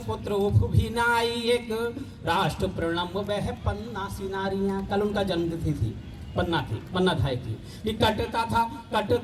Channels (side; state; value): both; identical; correlation 1.00